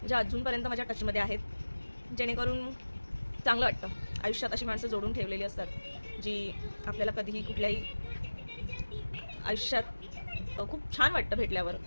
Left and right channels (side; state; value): both; inverted; correlation -1.00